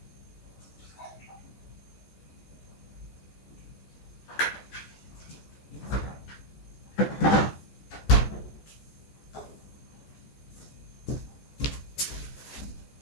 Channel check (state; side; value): late; right; 14 ms